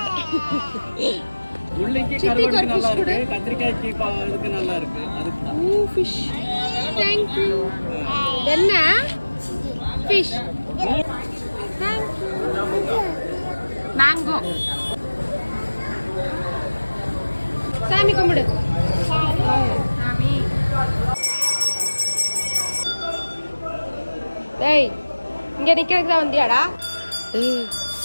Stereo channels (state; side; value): inverted; both; correlation -1.00